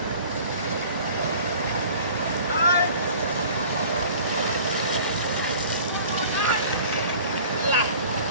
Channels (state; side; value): inverted; both; correlation -0.46